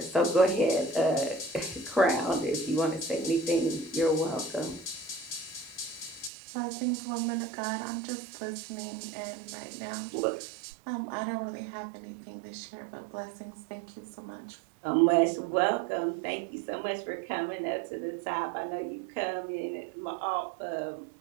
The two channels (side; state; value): left; drops out; at 6.3 s